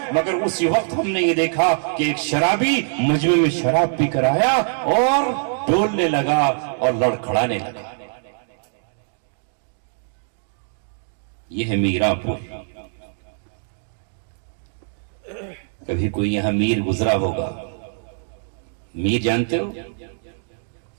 مگر اسی وقت ہم نے یہ دیکھا کہ ایک شرابی مجمع میں شراب پی کر آیا اور ڈولنے لگا اور لڑکھڑانے لگا. یہ ہے میرا پور. کبھی کوئی یہاں میر گزرا ہوگا. میر جانتے ہو؟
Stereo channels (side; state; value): left; silent; digital silence